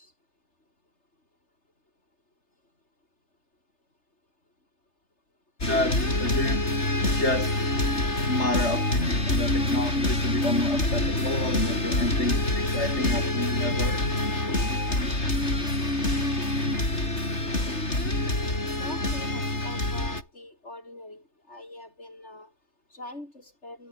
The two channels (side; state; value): right; late; 3.3 ms